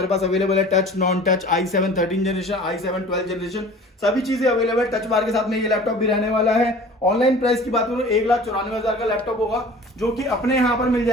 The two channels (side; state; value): both; normal; correlation 0.44